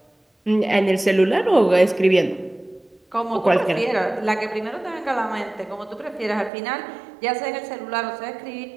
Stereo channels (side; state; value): left; drops out; at 6.5 s